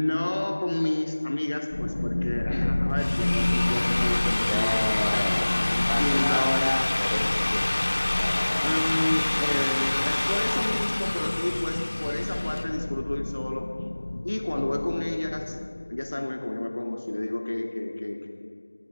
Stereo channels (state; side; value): inverted; both; correlation -1.00